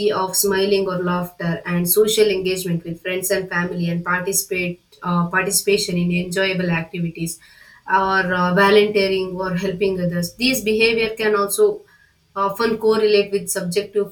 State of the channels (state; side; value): identical; both; correlation 1.00